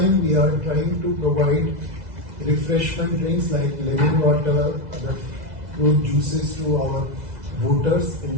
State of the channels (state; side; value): late; left; 2.0 ms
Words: we are trying to provide refreshment drinks like lemon water, other fruit juices to our voters in